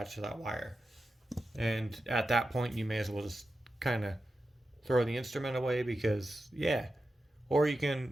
to that wire. And at that point, you may as well just kind of throw the instrument away because, yeah. Or you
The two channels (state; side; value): normal; both; correlation 0.91